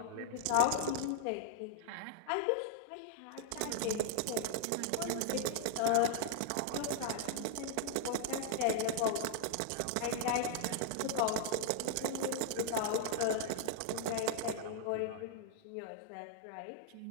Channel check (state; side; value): different; both; correlation -0.01